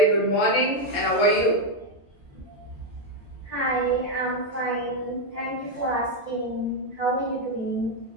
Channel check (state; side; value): normal; both; correlation 0.04